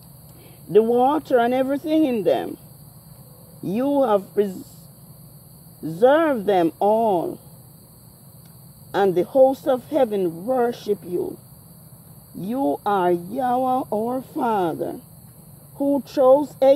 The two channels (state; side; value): identical; both; correlation 1.00